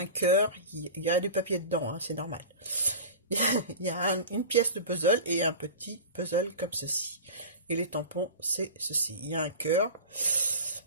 cœur, il y a du papier dedans, hein, c'est normal. Il y a une pièce de puzzle et un petit puzzle comme ceci. Et les tampons, c'est ceci. Il y a un cœur,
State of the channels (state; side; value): inverted; both; correlation -0.32